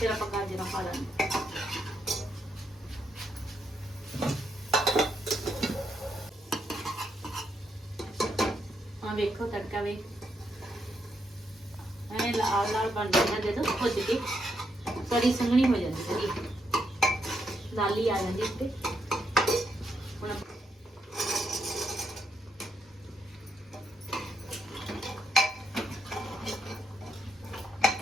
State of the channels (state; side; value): normal; both; correlation 0.79